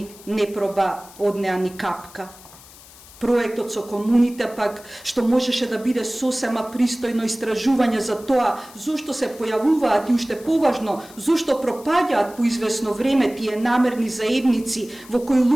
не проба од неа ни капка. Проектот со комуните пак, што можеше да биде сосема пристојно истражување за тоа зошто се појавуваат и уште поважно, зошто пропаѓаат по известно време тие намерни заедници во кои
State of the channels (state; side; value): noise; left; hiss, 21 dB below the sound